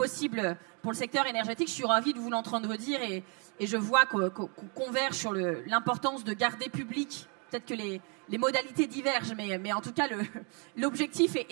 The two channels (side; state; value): left; quieter; 35.8 dB